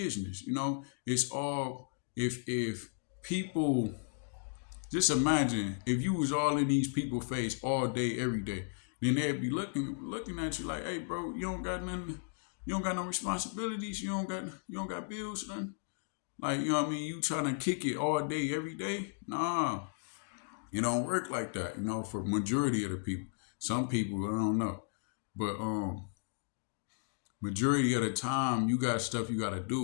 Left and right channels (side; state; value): right; silent; digital silence